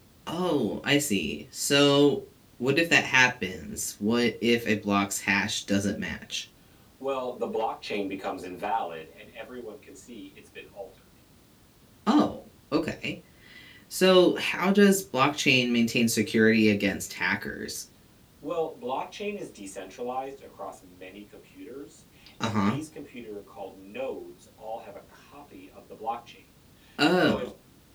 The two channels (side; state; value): both; identical; correlation 1.00